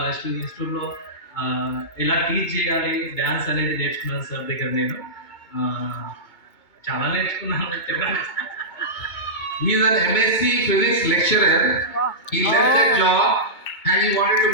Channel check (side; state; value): right; late; 2.2 ms